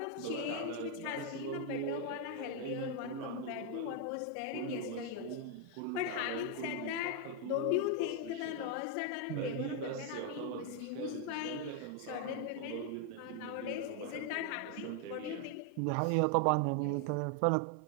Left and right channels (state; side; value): different; both; correlation 0.01